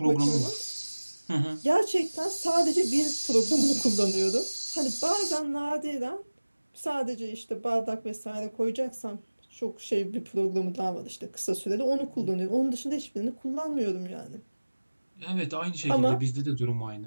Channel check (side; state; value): both; inverted; correlation -1.00